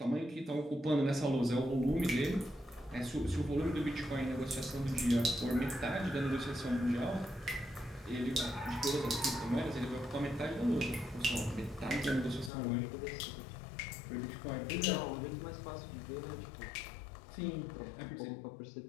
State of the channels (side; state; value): right; drops out; at 12.5 s